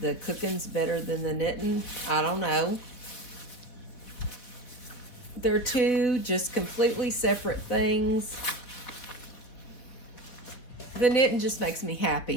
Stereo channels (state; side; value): late; right; 4.3 ms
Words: cooking's better than the knitting. I don't know. They're two just completely separate things. The knitting just makes me